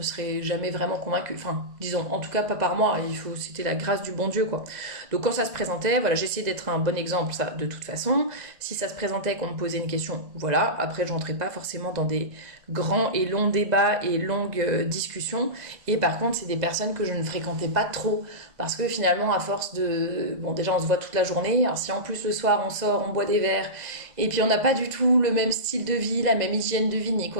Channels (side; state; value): left; late; 2.0 ms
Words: seraient jamais vraiment convaincues. Enfin, disons, en tout cas, pas par moi. C'était la grâce du bon Dieu, quoi. Donc, quand ça se présentait, voilà, j'essayais d'être un bon exemple, ça, de toute façon. Si ça se présentait qu'on me posait une question, voilà. Après, je rentrais pas forcément dans des grands et longs débats et longues discussions. Et par contre, c'est des personnes que je ne fréquentais pas trop. Parce que finalement, à force de... Bon, déjà, on se voit toute la journée. Alors, si en plus, le soir, on sort, on boit des verres, et puis on n'a pas du tout le même style de vie, la même hygiène de vie, ni